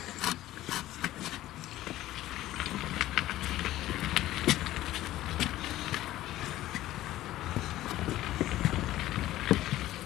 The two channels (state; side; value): quieter; right; 15.0 dB